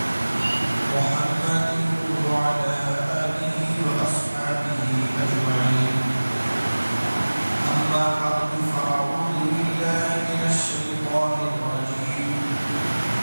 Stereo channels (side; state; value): both; inverted; correlation -1.00